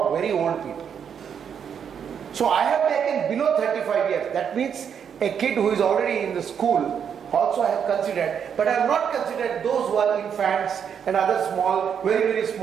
very old people. So I have taken below 35 years. That means a kid who is already in the school also I have considered. But I have not considered those who are infants and other small, very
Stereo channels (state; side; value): quieter; left; 7.7 dB